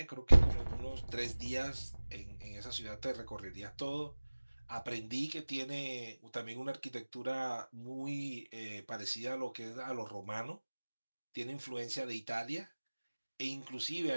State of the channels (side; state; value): both; inverted; correlation -1.00